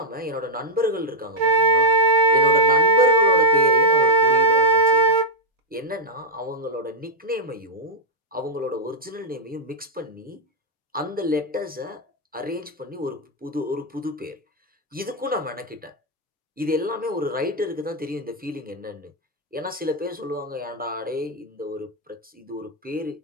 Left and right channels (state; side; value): normal; both; correlation -0.02